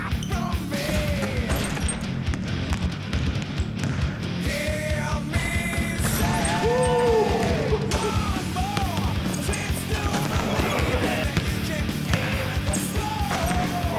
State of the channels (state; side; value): identical; both; correlation 1.00